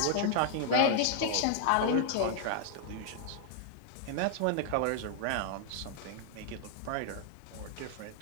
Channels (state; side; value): different; both; correlation -0.01